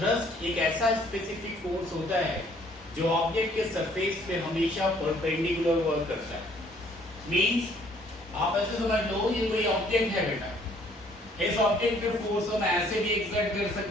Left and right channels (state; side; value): normal; both; correlation 0.61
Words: एक ऐसा स्पेसिफिक फोर्स होता है जो ऑब्जेक्ट के सरफेस पे हमेशा परपेंडिकुलर वर्क करता है। मींस आप ऐसे समझ लो, ये कोई ऑब्जेक्ट है बेटा, इस ऑब्जेक्ट पे फोर्स हम ऐसे भी एक्सर्ट कर